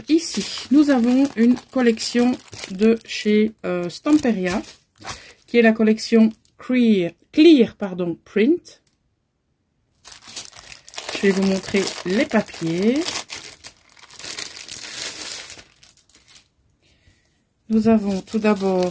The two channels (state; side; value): identical; both; correlation 1.00